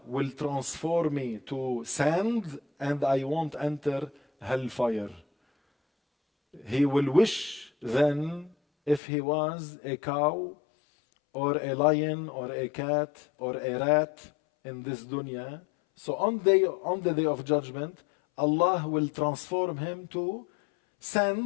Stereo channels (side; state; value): right; drops out; at 9.0 s